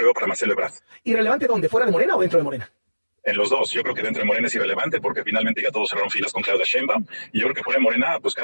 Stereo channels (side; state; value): both; inverted; correlation -1.00